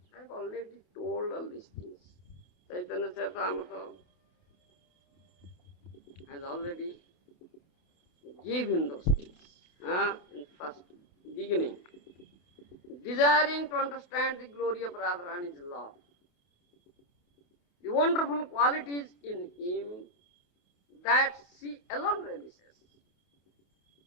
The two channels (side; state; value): right; late; 28 ms